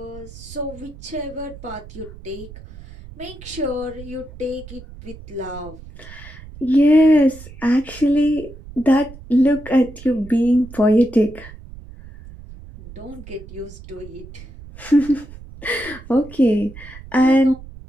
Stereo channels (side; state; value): right; noise; rumble, 17 dB below the sound